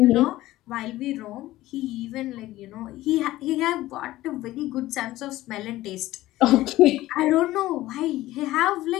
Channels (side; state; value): right; quieter; 16.3 dB